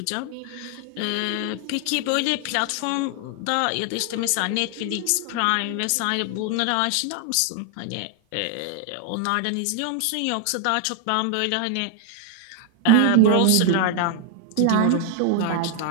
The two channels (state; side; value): different; both; correlation 0.00